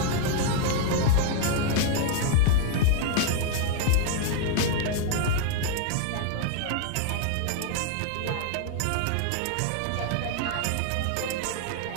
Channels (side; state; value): both; different; correlation 0.00